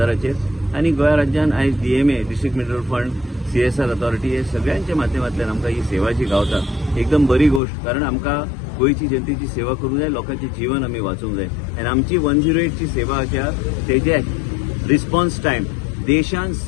आनी गोंय राज्यान आयज DMA district mineral fund CSR authority हे सगळ्यांच्या माध्यमांतल्यान आमकां ही सेवा जी गावता एकदम बरी गोष्ट. कारण आमकां गोंयची जनतेची सेवा करूंक जाय, लोकांचे जीवन आमी वाचोवंक जाय आनी आमची 108 ची सेवा आसा तेजे रिस्पॉन्स टायम देशान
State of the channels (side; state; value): right; drops out; at 7.6 s